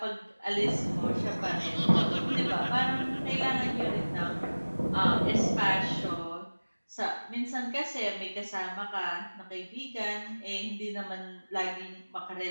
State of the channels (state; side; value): inverted; both; correlation -1.00